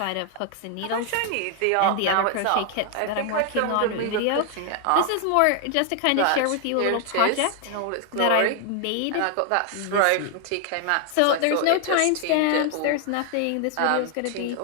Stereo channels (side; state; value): both; different; correlation 0.00